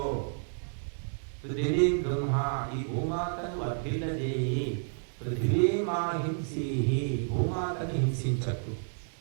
పృథివీం బ్రహ్మ, ఈ భూమాతను వర్ధిల్లజేయి. పృథివీమాహింసి, భూమాతను హింసించకు.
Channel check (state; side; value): silent; left; digital silence